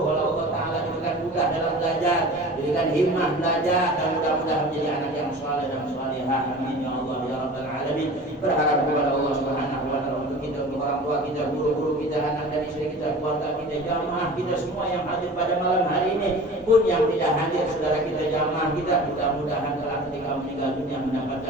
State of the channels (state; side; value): normal; both; correlation 0.39